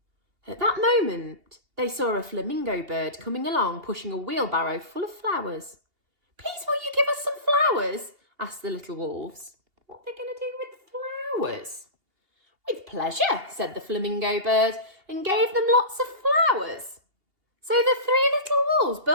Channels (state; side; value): late; left; 2.8 ms